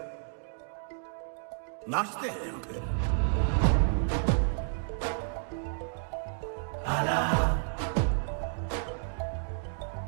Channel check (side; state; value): left; silent; digital silence